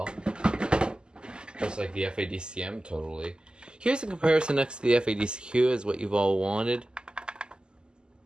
Just like the FADCM, totally. Here's a comparison next to the FADCQ as what you've all wanted.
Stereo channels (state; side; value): late; left; 0.047 ms